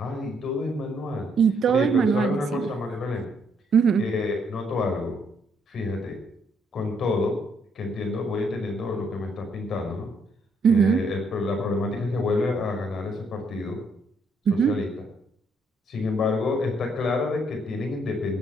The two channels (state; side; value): normal; both; correlation 0.72